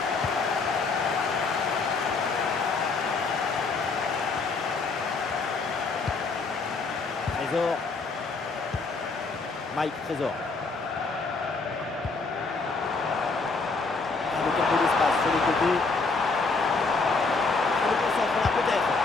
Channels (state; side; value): quieter; right; 4.1 dB